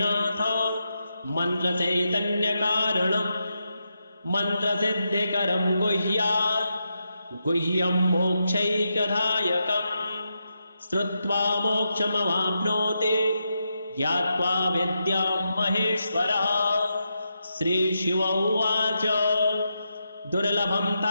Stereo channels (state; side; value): inverted; both; correlation -0.85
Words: नाथ मन्त्रचैतन्यकारणं मन्त्रसिद्धिकरं गुह्यात् गुह्यं मोक्षैकदायकम् श्रुत्वा मोक्षमवाप्नोति ज्ञात्वा विद्यां महेश्वरः। श्रीशिव उवाच दुर्लभं